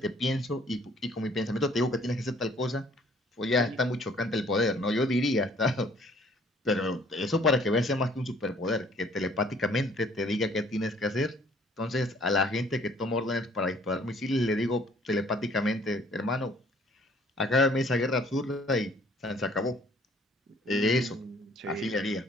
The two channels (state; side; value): normal; both; correlation 0.59